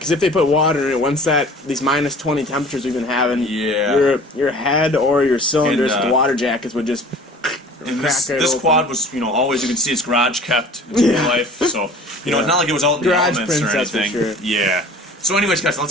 if they put water in it, once these minus 20 temperatures we've been having, your head or your cylinders, the water jackets would just crack this quad was, always, you can see it's garage kept its whole life. So, it's not like it was out in the elements or anything. For sure. Yeah. So anyways, guys,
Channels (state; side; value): normal; both; correlation 0.46